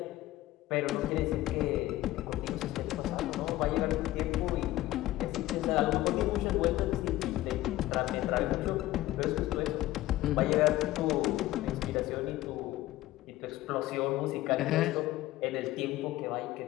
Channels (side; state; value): right; quieter; 16.2 dB